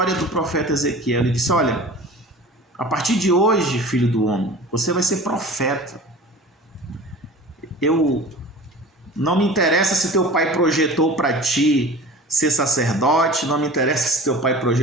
do profeta Ezequiel. Ele disse: olha, a partir de hoje, filho do homem, você vai ser profeta. Não me interessa se teu pai projetou para ti ser sacerdote, não me interessa se teu pai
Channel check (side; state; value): both; normal; correlation 0.39